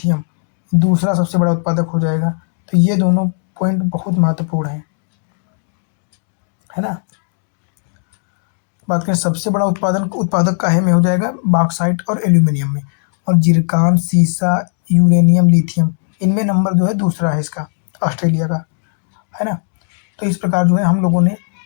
दूसरा सबसे बड़ा उत्पादक हो जाएगा। तो ये दोनों पॉइंट बहुत महत्वपूर्ण है ना। बात करें सबसे बड़ा उत्पादक काहे में हो जाएगा? बॉक्साइट और एल्यूमिनियम में। और जिरकान, सीसा, यूरेनियम, लिथियम, इनमें नंबर जो है दूसरा है इसका, ऑस्ट्रेलिया का, है ना। तो इस प्रकार जो है हम लोगों ने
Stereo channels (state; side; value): silent; right; 69 dB below the other